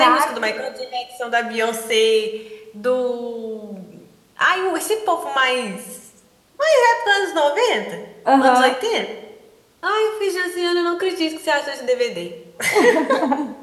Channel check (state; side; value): identical; both; correlation 1.00